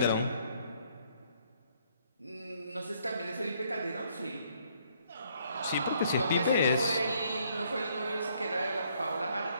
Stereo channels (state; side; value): inverted; both; correlation -0.67